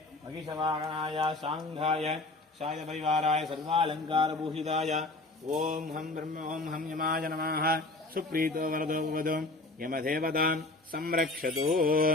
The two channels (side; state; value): right; quieter; 3.0 dB